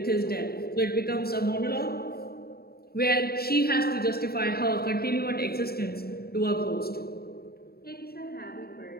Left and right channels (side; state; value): right; late; 0.45 ms